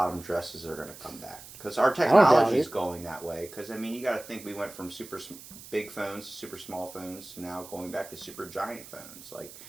dresses are going to come back. Because our technology is going that way. Because, I mean, you got to think we went from super big phones to super small phones to now going back to super giant phones. Like,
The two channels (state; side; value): noise; right; hiss, 16 dB below the sound